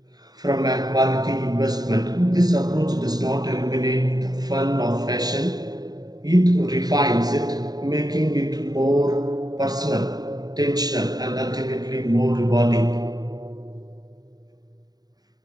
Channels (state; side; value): late; left; 0.19 ms